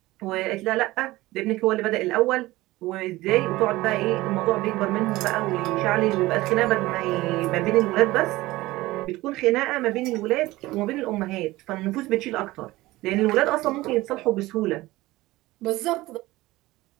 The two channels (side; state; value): left; quieter; 18.7 dB